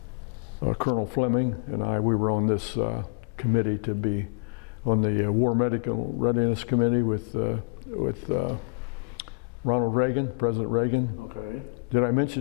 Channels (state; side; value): quieter; right; 39.2 dB